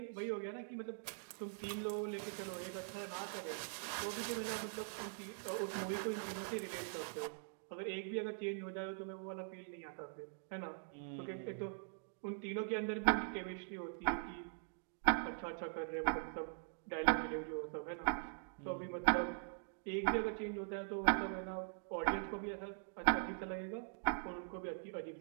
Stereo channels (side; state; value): left; silent; digital silence